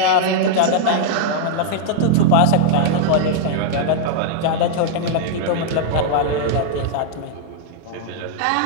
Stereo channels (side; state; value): both; different; correlation -0.01